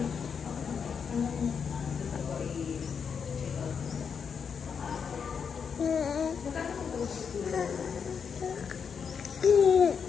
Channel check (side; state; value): right; quieter; 6.5 dB